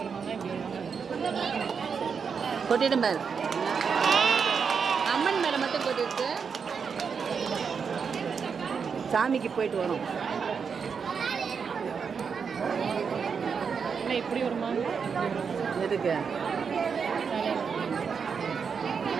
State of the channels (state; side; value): quieter; left; 6.1 dB